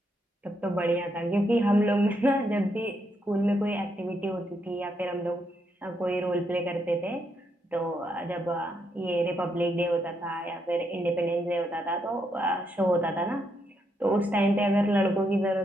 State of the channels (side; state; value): both; normal; correlation 0.78